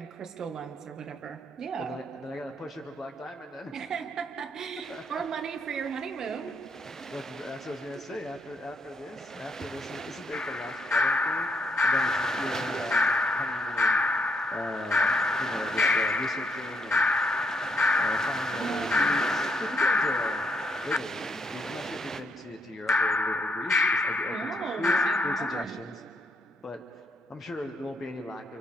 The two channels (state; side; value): normal; both; correlation 0.74